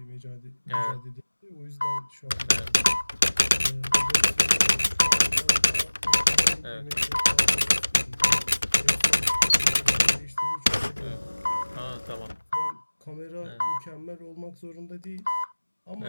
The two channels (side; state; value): both; inverted; correlation -1.00